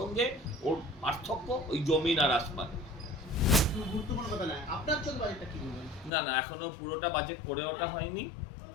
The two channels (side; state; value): right; drops out; at 6.1 s